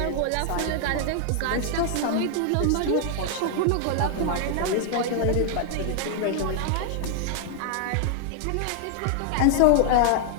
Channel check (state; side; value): different; both; correlation 0.00